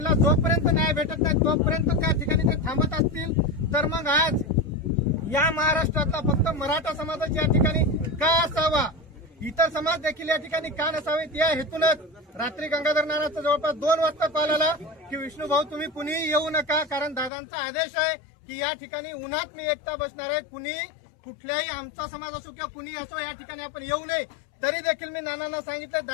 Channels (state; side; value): drops out; right; at 17.3 s